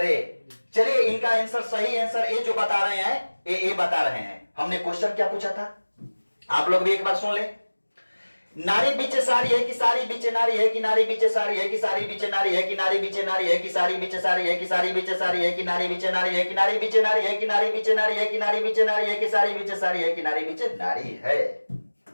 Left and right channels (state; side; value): inverted; both; correlation -1.00